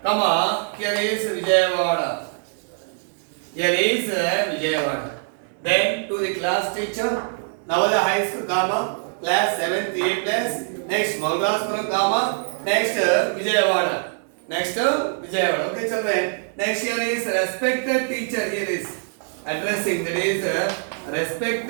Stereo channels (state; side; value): silent; left; 61 dB below the other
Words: comma, here is Vijayawada. Here is Vijayawada. Then to the class teacher, Navodaya High School, comma, class 7th A plus. Next Mogalraspuram, comma, next Vijayawada. Okay, children. Next here is respected teacher. Here is addressing. That is